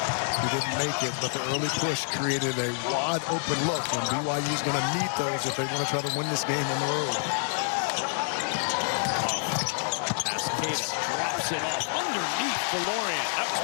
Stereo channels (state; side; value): silent; right; digital silence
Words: He didn't make it, but the early push created a wide open look, and BYU's going to need those if they want to try to win this game on the road. Pass Keita drops it off underneath the Lorient. That was